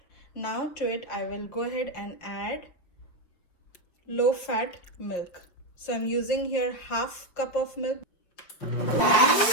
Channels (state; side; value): late; right; 5.6 ms